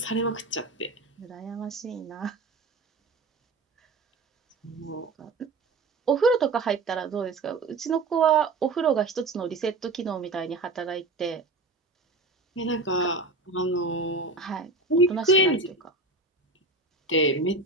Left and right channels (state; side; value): quieter; left; 3.3 dB